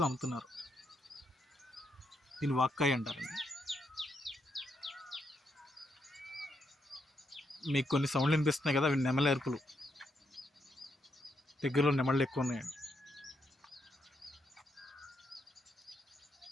అమ్ముతున్నారు. దీన్ని వాక్కాయ అంటారండి. మీకు కొన్ని సౌండ్లు వినిపిస్తున్నాయి కదా, అవి నెమలి అరుపులు. దగ్గరలో నెమళ్ళు ఎక్కువ ఉన్నాయండి.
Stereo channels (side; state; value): both; normal; correlation 0.79